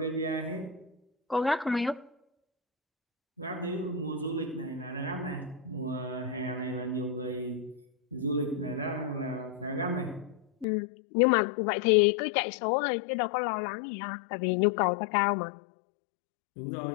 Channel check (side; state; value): right; drops out; at 10.7 s